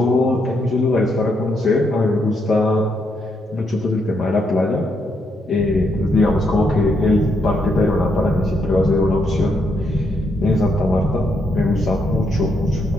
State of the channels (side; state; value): both; normal; correlation 0.78